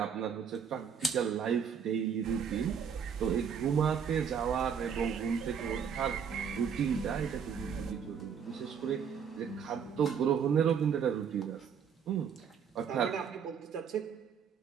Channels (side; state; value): left; quieter; 7.1 dB